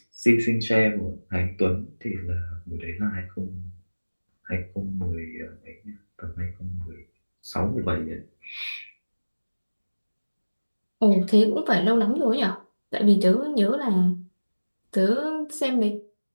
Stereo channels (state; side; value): inverted; both; correlation -1.00